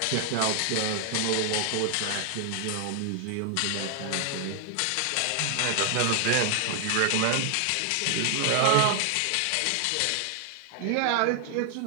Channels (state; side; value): different; both; correlation 0.00